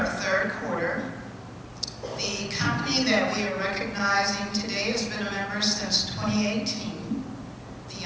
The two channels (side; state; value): both; identical; correlation 1.00